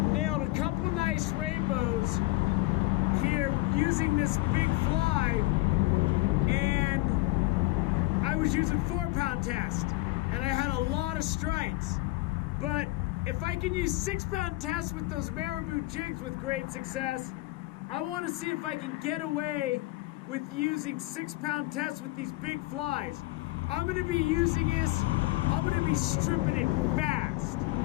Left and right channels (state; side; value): quieter; right; 20.7 dB